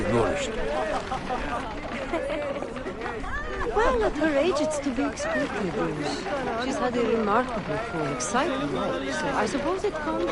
nourished. Well, at her age, it's to be expected. She's had a remarkably full, exciting life, so I suppose it comes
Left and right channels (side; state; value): both; identical; correlation 1.00